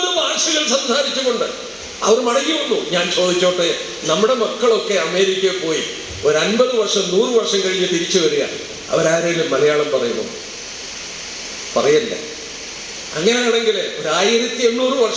ഭാഷകൾ സംസാരിച്ചുകൊണ്ട് അവർ മടങ്ങി വന്നു. ഞാൻ ചോദിച്ചോട്ടെ, നമ്മുടെ മക്കളൊക്കെ അമേരിക്കയിൽ പോയി ഒരു 50 വർഷം 100 വർഷം കഴിഞ്ഞ് തിരിച്ചു വരിക, അവരാരെങ്കിലും മലയാളം പറയുന്നു? പറയല്ല. അങ്ങനെയാണെങ്കിൽ ഒരു 1800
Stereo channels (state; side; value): identical; both; correlation 1.00